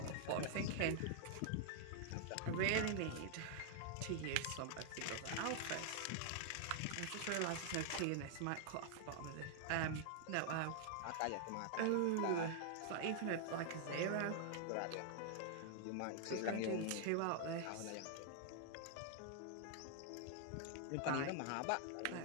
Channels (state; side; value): different; both; correlation 0.00